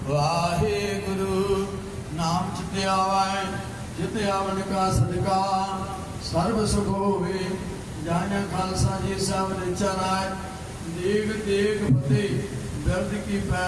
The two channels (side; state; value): both; identical; correlation 1.00